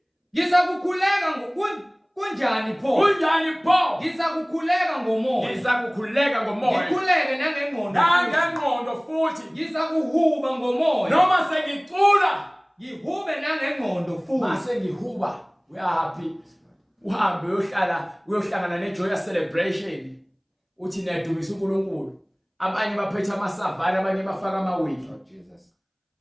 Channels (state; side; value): identical; both; correlation 1.00